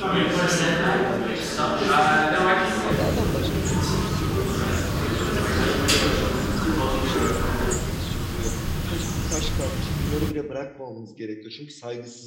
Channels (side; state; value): both; identical; correlation 1.00